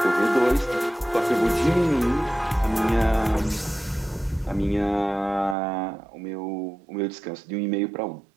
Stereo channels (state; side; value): drops out; left; at 5.6 s